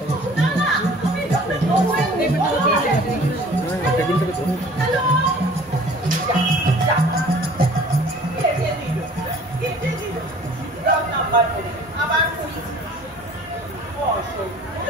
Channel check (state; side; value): normal; both; correlation 0.49